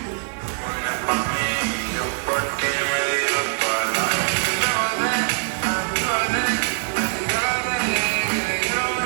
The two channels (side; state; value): left; silent; digital silence